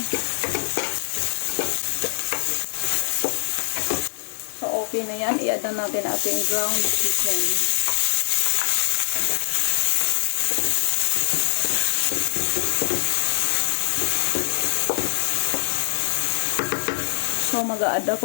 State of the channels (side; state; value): right; silent; digital silence